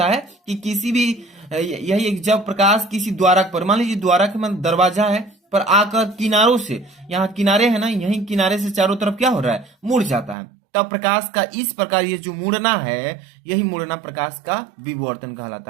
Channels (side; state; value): left; drops out; at 10.4 s